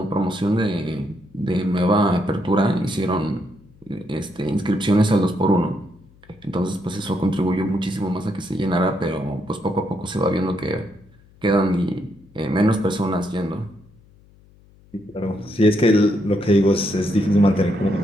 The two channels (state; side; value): noise; left; hum, 28 dB below the sound